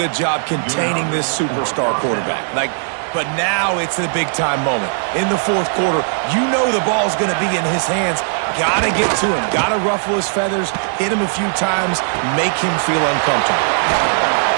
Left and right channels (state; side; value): silent; left; 66 dB below the other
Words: job containing this superstar quarterback. But now it's a big-time moment. In the fourth quarter, you know the ball's going to be in his hands. Got to get to him. Got to ruffle his feathers, hit him a few times, make him feel uncomfortable.